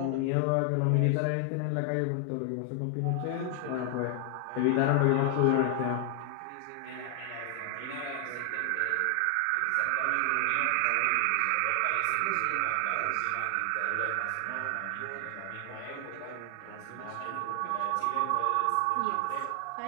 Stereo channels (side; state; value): both; different; correlation 0.00